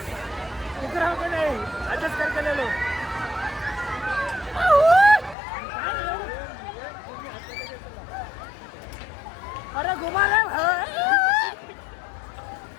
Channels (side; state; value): right; drops out; at 5.4 s